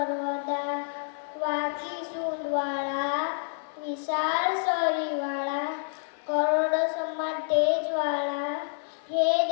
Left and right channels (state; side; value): silent; right; 58 dB below the other